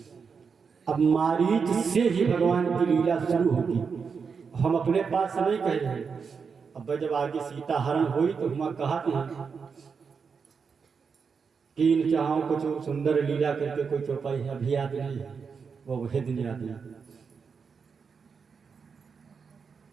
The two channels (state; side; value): quieter; left; 5.7 dB